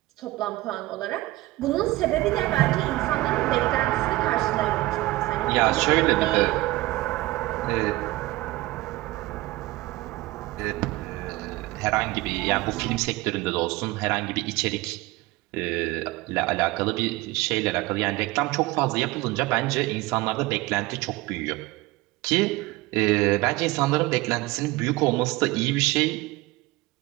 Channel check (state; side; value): quieter; left; 19.5 dB